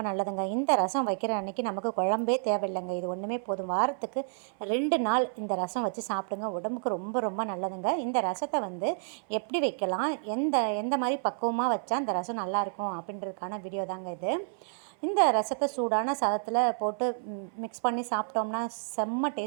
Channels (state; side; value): silent; left; 58 dB below the other